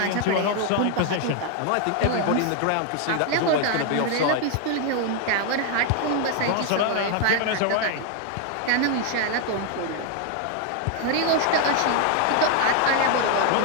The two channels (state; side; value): different; both; correlation 0.00